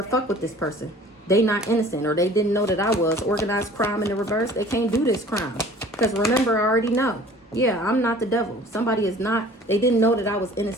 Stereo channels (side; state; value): both; normal; correlation 0.48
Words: fuck with this person. They not innocent, or they didn't know that I was. Organized crime in the reverse. They can't do this crime. Because remember, I already know. Yeah, I'm not the devil. Somebody is not. They didn't know that I was